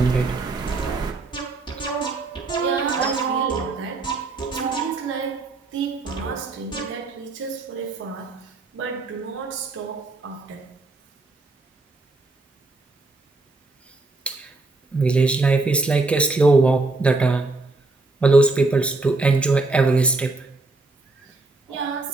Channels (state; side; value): quieter; left; 3.3 dB